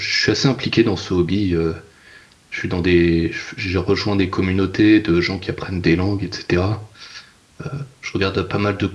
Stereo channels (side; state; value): both; identical; correlation 1.00